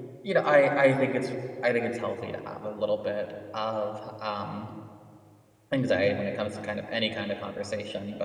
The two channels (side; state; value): both; identical; correlation 1.00